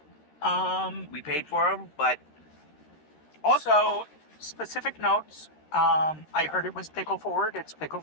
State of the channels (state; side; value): late; right; 13 ms